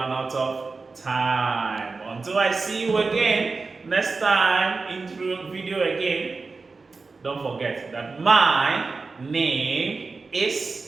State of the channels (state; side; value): quieter; left; 4.1 dB